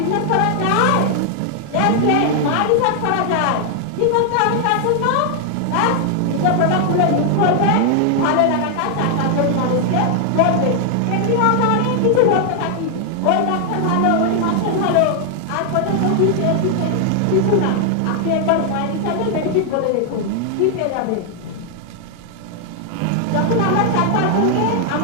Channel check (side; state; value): both; different; correlation 0.00